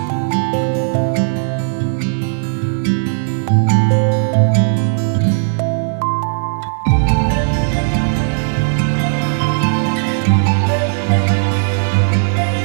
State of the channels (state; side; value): silent; left; digital silence